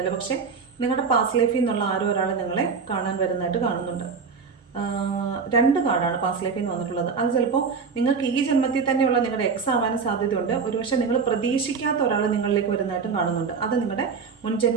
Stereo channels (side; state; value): left; quieter; 5.4 dB